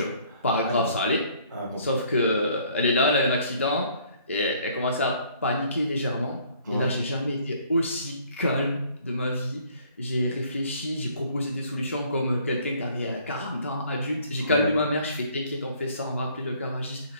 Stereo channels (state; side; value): inverted; both; correlation -0.60